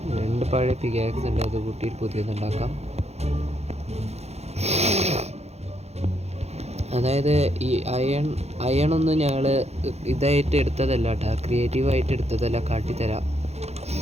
രണ്ട് പഴയ പിക്കാക്സ് ഉണ്ട്, അത് കൂട്ടിയിട്ട് പുതിയതുണ്ടാക്കാം. അതായത് ഈ അയണൊന്നും ഞങ്ങൾ ഇതായിട്ട് എടുത്തതല്ല കേട്ടോ, ക്രിയേറ്റീവായിട്ട് എടുത്തതല്ല. കാട്ടിത്തരാം.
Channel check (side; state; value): left; late; 0.31 ms